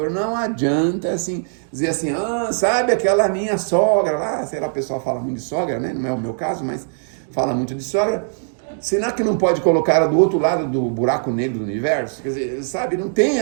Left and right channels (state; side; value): silent; left; digital silence